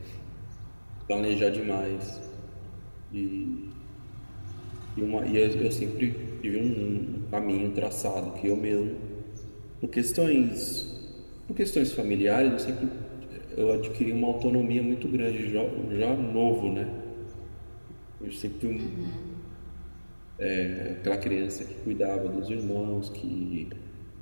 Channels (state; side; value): inverted; both; correlation -1.00